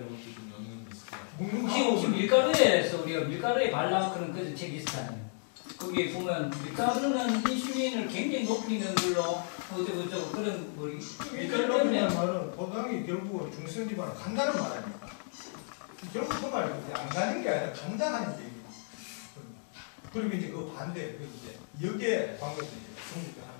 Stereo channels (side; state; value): right; silent; 56 dB below the other